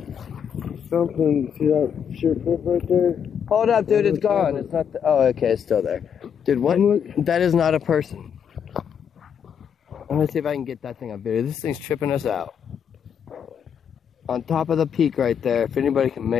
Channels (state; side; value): quieter; right; 7.8 dB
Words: Something, see that sheer cliff right there? Hold up, dude, it's gone. It's not, oh, okay, it's still there. Dude, what? That is not a person. I'm gonna see if I can get that thing on video. This thing's tripping us out. On top of the peak right there. If anybody can